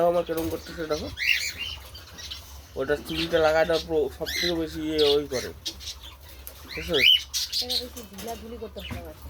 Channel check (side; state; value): both; identical; correlation 1.00